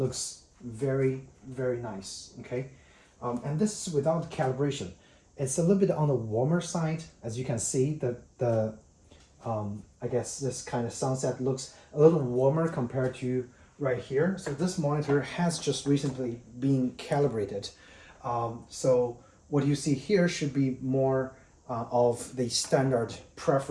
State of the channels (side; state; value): both; identical; correlation 1.00